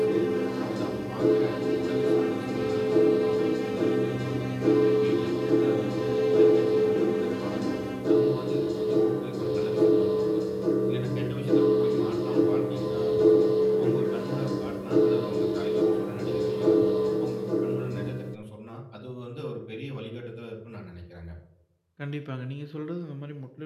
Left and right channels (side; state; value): both; identical; correlation 1.00